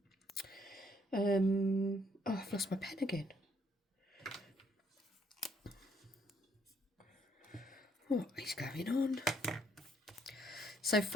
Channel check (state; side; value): normal; both; correlation 0.66